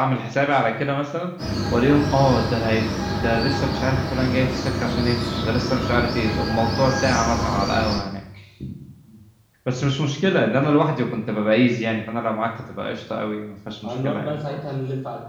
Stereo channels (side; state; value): both; identical; correlation 1.00